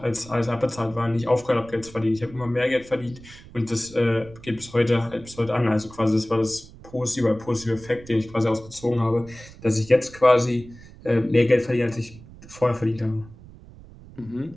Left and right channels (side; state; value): right; noise; rumble, 19 dB below the sound